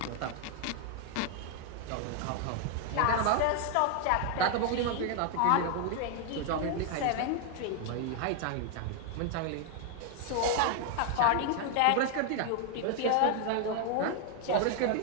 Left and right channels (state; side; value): different; both; correlation 0.00